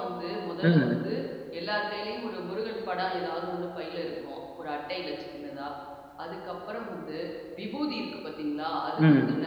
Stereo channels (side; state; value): both; identical; correlation 1.00